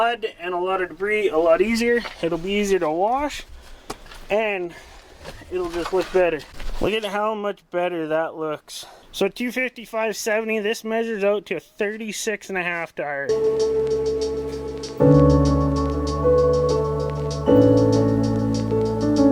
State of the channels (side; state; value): both; identical; correlation 1.00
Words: and a lot of debris a lot easier. It'll be easier to wash and it'll just look better. Look at how much better that looks. So 255/70, this measures out to a 36.5 tire.